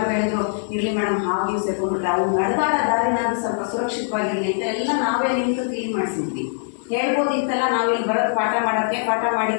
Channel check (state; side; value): silent; right; 64 dB below the other